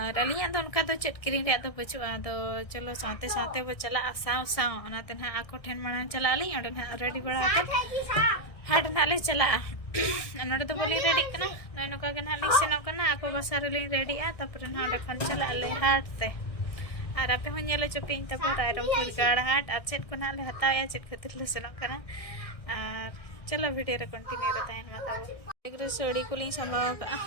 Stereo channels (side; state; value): right; late; 1.6 ms